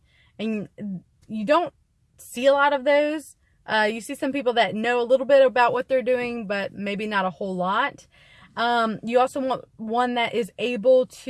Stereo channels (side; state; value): both; identical; correlation 1.00